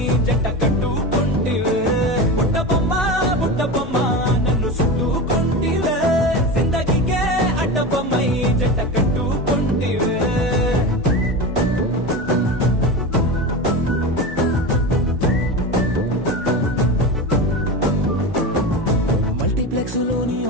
జంట కట్టుకుంటివే బుట్ట బొమ్మ నన్ను చుట్టుకుంటివే జిందగీకే అడ్డ బొమ్మై జంట కట్టుకుంటివే లోని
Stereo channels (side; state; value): both; normal; correlation 0.24